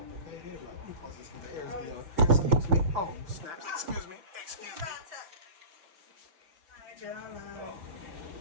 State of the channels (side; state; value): left; late; 5.9 ms